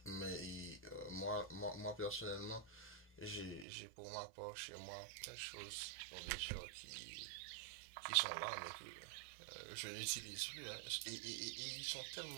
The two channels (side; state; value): left; drops out; at 3.7 s